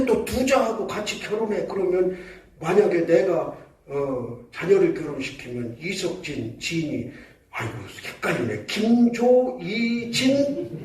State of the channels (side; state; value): both; identical; correlation 1.00